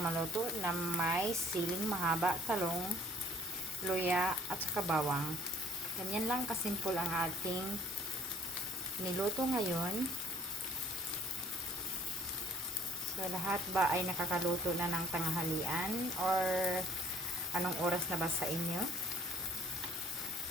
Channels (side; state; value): both; normal; correlation 0.57